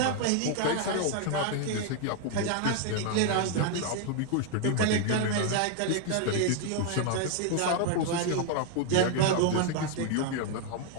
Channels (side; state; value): both; different; correlation 0.00